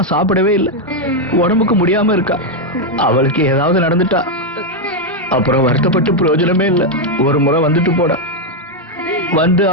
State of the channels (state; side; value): normal; both; correlation 0.02